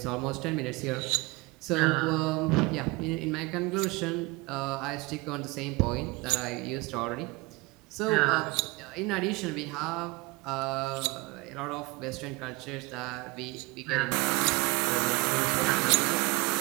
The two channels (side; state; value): left; quieter; 24.5 dB